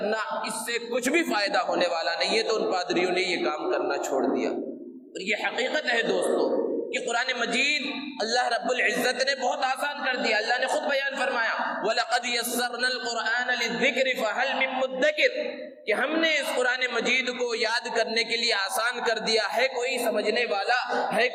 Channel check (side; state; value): both; identical; correlation 1.00